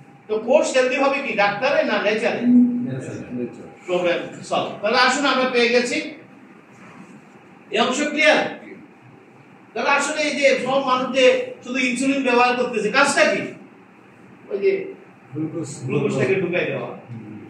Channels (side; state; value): both; identical; correlation 1.00